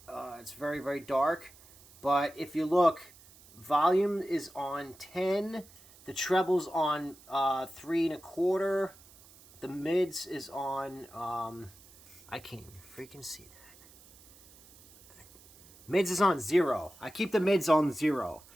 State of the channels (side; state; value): right; noise; hiss, 24 dB below the sound